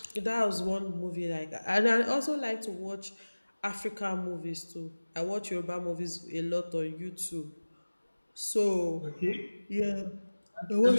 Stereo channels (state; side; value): inverted; both; correlation -1.00